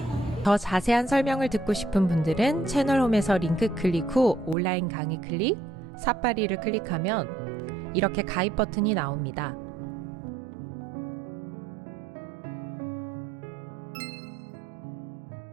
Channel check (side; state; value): left; drops out; at 4.5 s